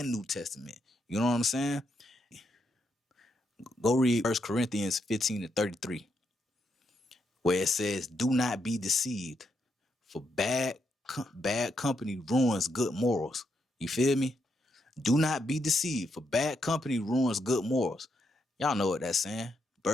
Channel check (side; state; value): both; normal; correlation 0.80